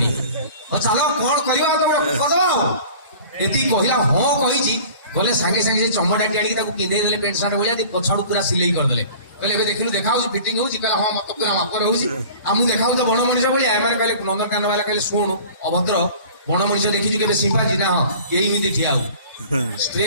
चलो कोन करियो तो कदो एती कहिला हां कहिछि बोले संगे संगे से चमड़ाटी आडी ताको पिंदे देले पेंट शर्ट बोलिया दी पछाडू पूरा सिलाई कर देले कहले एबे देखिलु देखाउ फिटिंग होछि कहला हां मत पूरा मापर होछि आमु देखाउ तो बण मनिष बोलिया एमाने कहले नंदनकानन वाला कहले सुन अभद्र बण मनिष देखिछु केबे सिंपाजी ना हां एही मिति ठियाउ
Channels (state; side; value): inverted; both; correlation -0.44